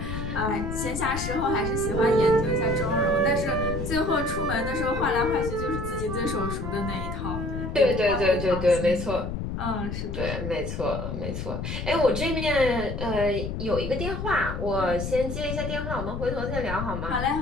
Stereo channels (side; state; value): left; noise; rumble, 5 dB below the sound